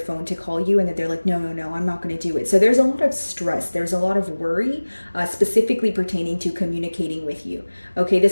to call you and then they're like, no, I'm not going to do it. So there's a lot of stress. There's a lot of worry, specifically pertaining to communicating with you. Okay,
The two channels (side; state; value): both; inverted; correlation -1.00